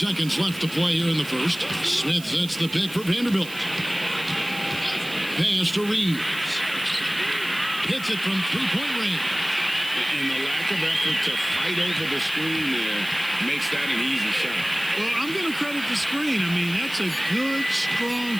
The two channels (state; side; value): noise; right; hiss, 16 dB below the sound